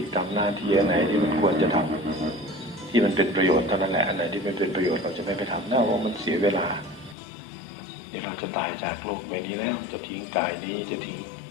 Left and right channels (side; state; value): right; drops out; at 7.2 s